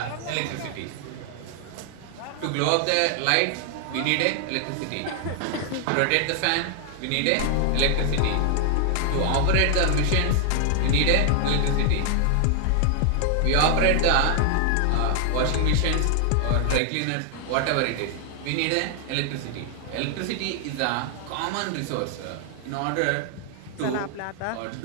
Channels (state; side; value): different; both; correlation 0.00